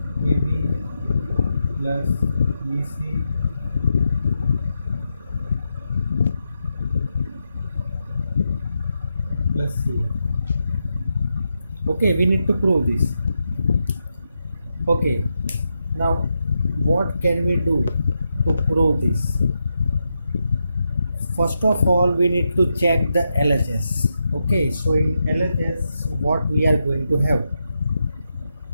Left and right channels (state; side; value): inverted; both; correlation -0.85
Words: ab plus bc plus c. Okay, we need to prove this. Okay, now what can we do to prove this? First of all, we need to check the LHS. Okay, so in LHS what we are going to have?